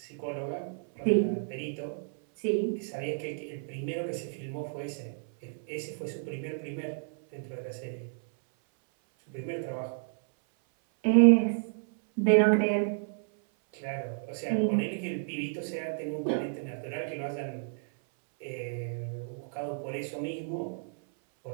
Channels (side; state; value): left; silent; 57 dB below the other